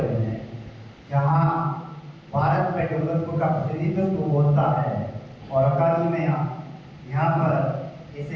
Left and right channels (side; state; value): both; identical; correlation 1.00